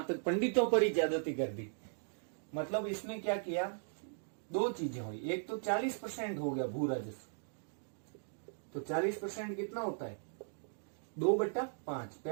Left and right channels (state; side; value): silent; left; digital silence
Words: तक पंडितों पर ही ज्यादती कर दी। मतलब इसने क्या किया, दो चीजें हुई, एक तो 40% हो गया भू राजस्व, तो 40% कितना होता है, 2/5।